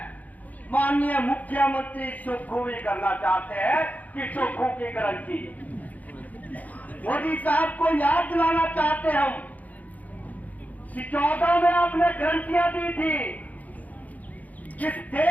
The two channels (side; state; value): right; late; 0.077 ms